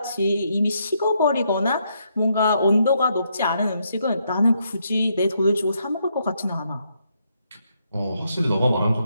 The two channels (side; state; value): both; inverted; correlation -0.77